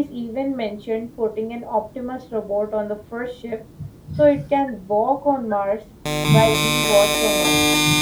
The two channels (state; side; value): identical; both; correlation 1.00